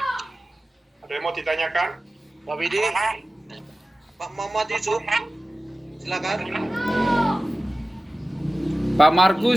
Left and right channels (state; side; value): normal; both; correlation 0.95